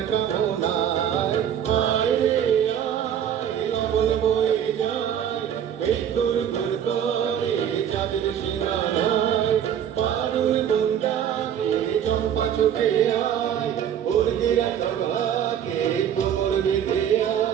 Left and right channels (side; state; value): left; quieter; 9.3 dB